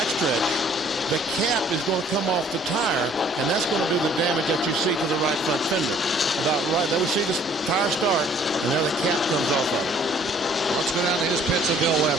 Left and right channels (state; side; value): normal; both; correlation 0.58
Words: the cap is going to come off the tire, and that's going to do the damage that you see to the right front fender. About right there, we see the tire start, and there the cap comes off of it. Let's go down to his pits of Bill